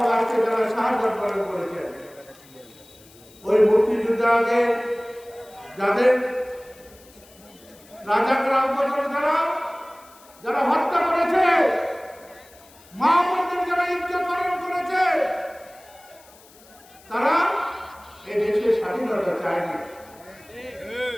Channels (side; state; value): left; noise; hiss, 25 dB below the sound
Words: আজকে যারা শাহাদাত বরণ করেছেন ওই মুক্তিযোদ্ধাদের যাদের রাজাকরাম যারা হত্যা করেছে, মা বোনদের যারা ইজ্জত হরণ করেছে, তারা এই দেশের স্বাধীনতা চায়নি।